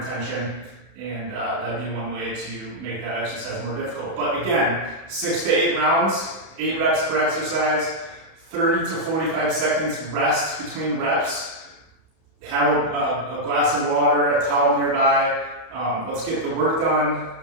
tension, and that'd be one way to make that exercise more difficult. But again, 6 to 8 rounds, 8 reps per exercise, 30 to 45 seconds rest between reps. Have a glass of water, a towel nearby. Let's get the work done,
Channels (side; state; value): left; late; 32 ms